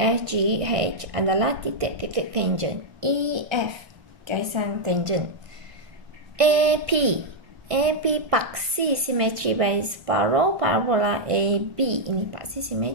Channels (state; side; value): late; left; 1.6 ms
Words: adalah titik-titik tangen. EF gaisan tangen. AP paksi simetri bagi separuh parabola AB. Ini paksi